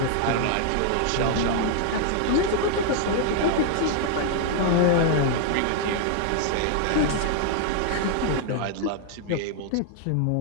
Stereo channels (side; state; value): both; different; correlation -0.01